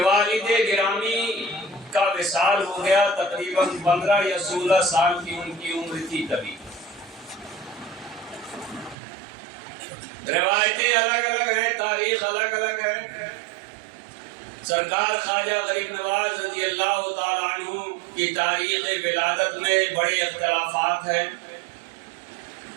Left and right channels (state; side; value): drops out; left; at 9.0 s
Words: والد گرامی کا وصال ہو گیا، تقریباً 15 یا 16 سال کی ان کی عمر تھی تبھی۔ روایتیں الگ الگ ہیں، تاریخ الگ الگ ہے۔ سرکار خواجہ غریب نواز رضی اللہ تعالیٰ عنہ کی تاریخ ولادت میں بڑے اختلافات ہیں۔